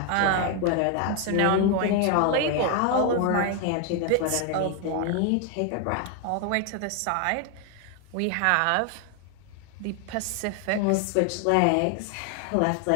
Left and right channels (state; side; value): different; both; correlation 0.01